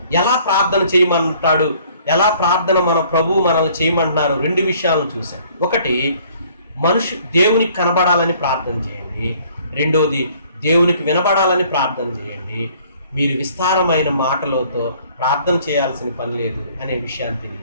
ఎలా ప్రార్థన చేయమంటాడు, ఎలా ప్రార్థన మన ప్రభు మనల్ని చేయమంటున్నారు 2 విషయాలను చూశాం. ఒకటి, దేవునికి కనబడాలని ప్రార్థన చేయండి. రెండోది, దేవునికి వినబడాలని ప్రార్థన చేయండి. మీరు విస్తారమైన మాటలతో ప్రార్థన చేయాల్సిన పని లేదు అనే విషయాన్ని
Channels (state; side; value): inverted; both; correlation -0.58